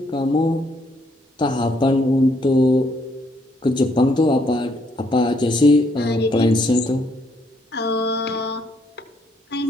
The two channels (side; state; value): both; normal; correlation 0.71